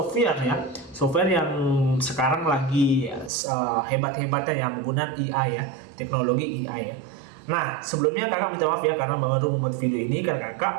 ya. Software yang sekarang lagi hebat-hebatnya yang menggunakan AI ya, teknologi AI ya. Nah, sebelumnya kakak minta maaf ya karena baru membuat video ini karena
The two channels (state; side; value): drops out; left; at 3.3 s